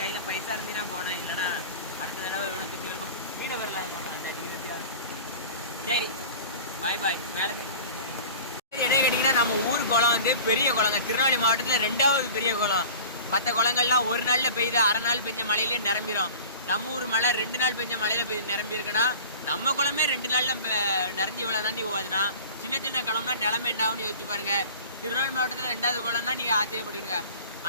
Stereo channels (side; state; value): both; inverted; correlation -0.40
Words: கையில் பைசா இருந்தீங்கன்னா போனேன். இல்லைன்னா அடுத்த தடவை எவ்வளோ திண்டுக்கலுக்கும் மீனை வரலாம். சரி, பாய். மேலே என்ன கேட்டிங்கன்னா, நம்ம ஊர் குளம் வந்து பெரிய குளங்க. திருநெல்வேலி மாவட்டத்தில் 2வது பெரிய குளம். மற்ற குளங்கள்லாம் ஒரு நாளில் பெய்யுது, 1/2 நாள் பெஞ்ச மழையிலே நிரம்பிடும். நம்ம ஊர் மழை 2 நாள் பெஞ்ச மழையில் நிரம்பி இருக்குன்னா, நம்ம குளமே 2 நாளில் நிறைஞ்சி இவ்வளோ தாண்டி போகுதுன்னா, சின்ன குளம்னா நிலமை என்ன ஆகும்னு யோசிச்சு பாருங்க. திருநெல்வேலி மாவட்டத்தில் 2வது குளம்னா நீங்கள் ஆச்சரியப்படுவீங்க.